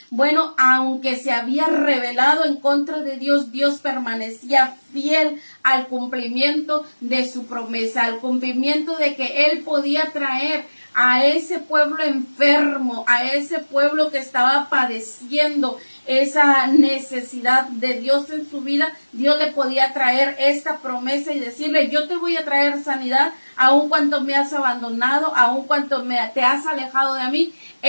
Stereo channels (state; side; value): inverted; both; correlation -1.00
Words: Bueno, aunque se había rebelado en contra de Dios, Dios permanecía fiel al cumplimiento de su promesa, al cumplimiento de que él podía traer a ese pueblo enfermo, a ese pueblo que estaba padeciendo esa necesidad de Dios en su vida. Dios le podía traer esta promesa y decirle: yo te voy a traer sanidad, aun cuando me has abandonado, aun cuando te has alejado de mí.